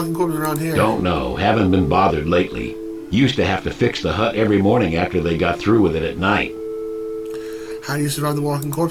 corpses around here? Don't know. Haven't been bothered lately. Used to have to fix the hut every morning after they got through with it at night. How do you survive the walking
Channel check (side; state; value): both; identical; correlation 1.00